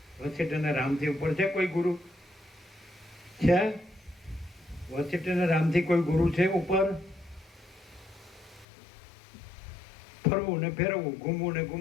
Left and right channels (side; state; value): right; drops out; at 8.7 s